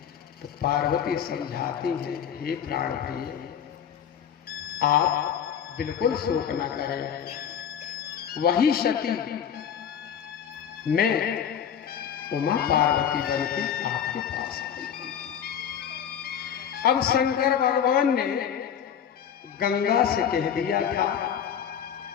तो पार्वती समझाती है, हे प्राण प्रिय, आप बिल्कुल शोक न करें, वही सती मैं उमा पार्वती बनकर आपके पास आई। अब शंकर भगवान ने गंगा से कह दिया था,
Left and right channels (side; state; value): right; quieter; 8.6 dB